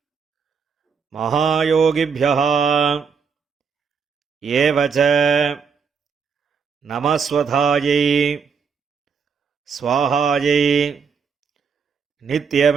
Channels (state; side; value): quieter; left; 6.1 dB